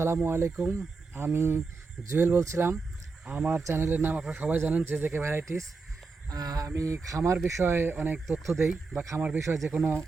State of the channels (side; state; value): left; quieter; 4.3 dB